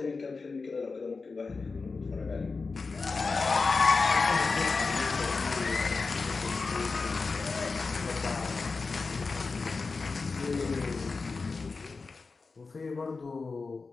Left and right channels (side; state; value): right; quieter; 4.3 dB